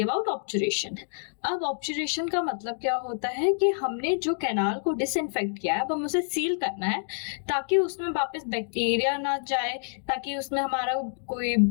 about obturation. अब obturation का मतलब क्या होता है कि हमने जो कैनाल को डिसइंफेक्ट किया है अब हम उसे सील करना है ताकि उसमें वापस बैक्टीरिया ना जाए, ताकि उसमें हमारा कोई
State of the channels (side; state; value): right; silent; digital silence